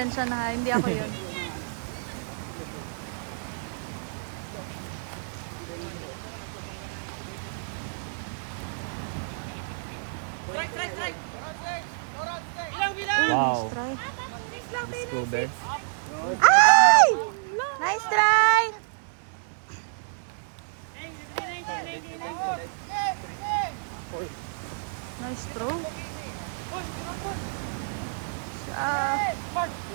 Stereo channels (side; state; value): left; silent; digital silence